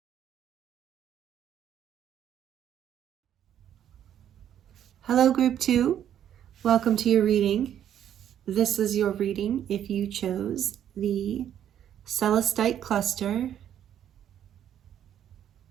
Hello, Group 2. Welcome to your reading. This is your reading if you chose the Celestite cluster.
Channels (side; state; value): left; quieter; 10.2 dB